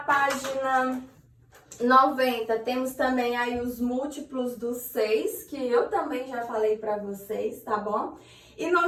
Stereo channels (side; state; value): both; identical; correlation 1.00